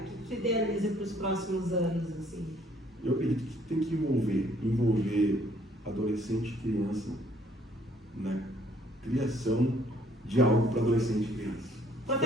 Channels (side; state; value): both; normal; correlation 0.63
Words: tu idealiza para os próximos anos, assim? Eu acredito que tem que envolver adolescente e criança na criação de algo para adolescente e criança.